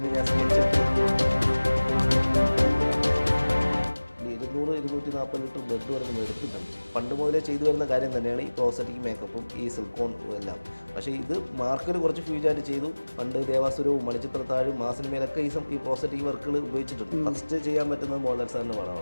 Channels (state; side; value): inverted; both; correlation -1.00